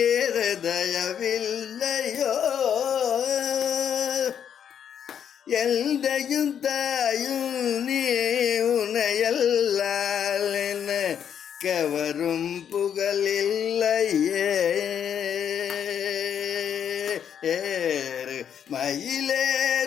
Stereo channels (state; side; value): quieter; right; 8.6 dB